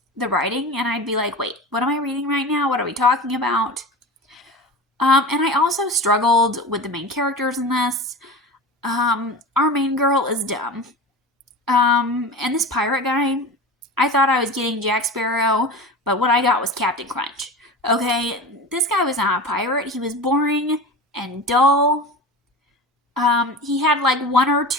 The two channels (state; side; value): normal; both; correlation 0.31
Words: the writing, and I'd be like, wait, what am I reading right now? What are we talking about? And I also struggled with the main characters in this. Our main girl is dumb. And this pirate guy, I thought I was getting Jack Sparrow, but what I got was Captain Crunch. Okay, this guy was not a pirate. He was boring and dull. He had like one or